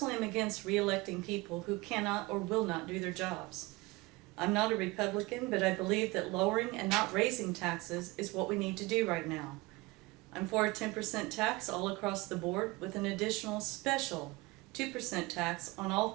am against re-electing people who cannot or will not do their jobs. I'm not a Republican, but I believe that lowering and not raising taxes is what we need to do right now. I'm for a 10% tax all across the board with an additional special 2% tax on all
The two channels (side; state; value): left; quieter; 22.7 dB